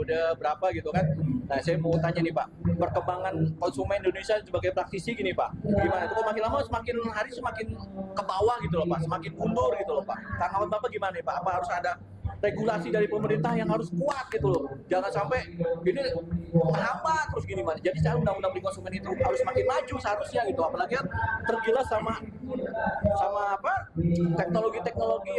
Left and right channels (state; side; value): identical; both; correlation 1.00